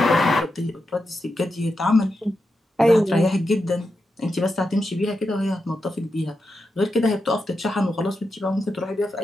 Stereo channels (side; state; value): both; normal; correlation 0.87